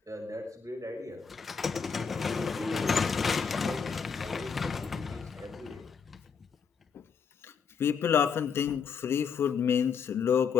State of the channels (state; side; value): quieter; right; 6.2 dB